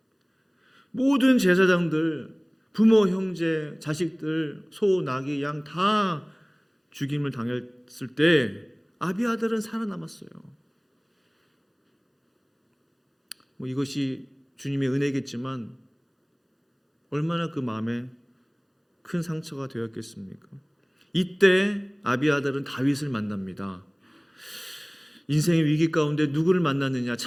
모든 제사장들, 부모, 형제, 자식들, 소, 나귀, 양 다 죽임을 당했을 때 아비아달은 살아남았어요. 이것이 주님의 은혜겠지만 얼마나 그 마음에 큰 상처가 되었겠습니까? 이때 아비아달은 다윗을 만납니다. 인생의 위기 가운데 누구를 만났느냐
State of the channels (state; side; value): identical; both; correlation 1.00